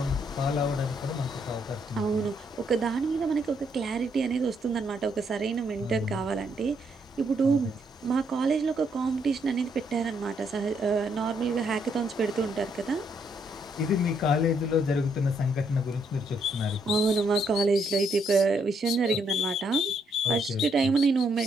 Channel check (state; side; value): normal; both; correlation 0.74